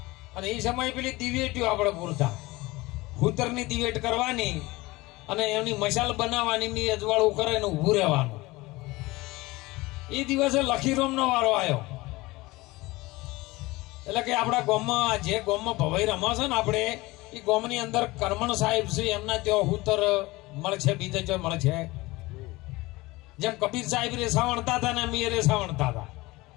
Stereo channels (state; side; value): quieter; right; 21.1 dB